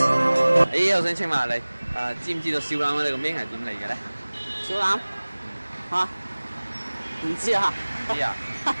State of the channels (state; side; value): inverted; both; correlation -1.00